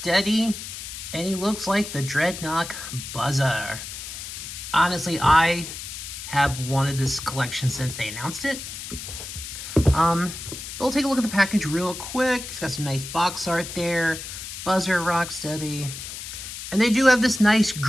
and he looks like the Dreadnok Buzzer. Honestly, I have wanted this collection since they announced it. But we'll take a look at the package real quick. It's got some nice box art there. Buzzer, Rocksteady. And they do have this nice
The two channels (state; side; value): noise; left; hiss, 9 dB below the sound